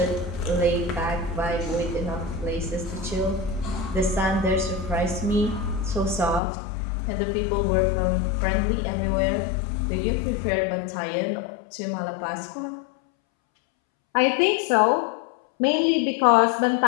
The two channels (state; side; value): drops out; right; at 6.4 s